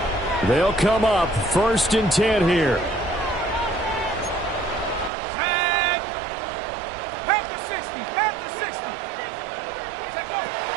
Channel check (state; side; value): drops out; left; at 5.1 s